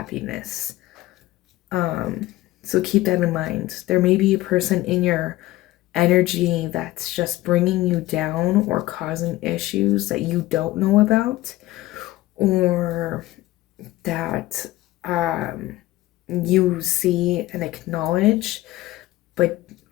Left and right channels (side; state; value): right; quieter; 17.1 dB